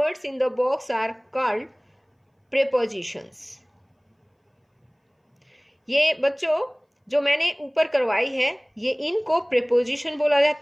in the box are called prepositions. ये बच्चों जो मैंने ऊपर करवाई है ये इनको प्रीपोजिशन बोला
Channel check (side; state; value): both; identical; correlation 1.00